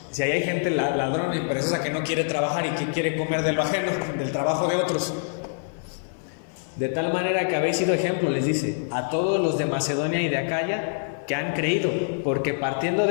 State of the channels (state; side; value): silent; right; 56 dB below the other